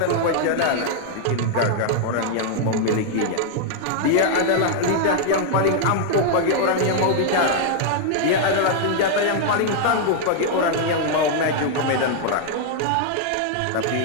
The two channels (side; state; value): both; different; correlation 0.00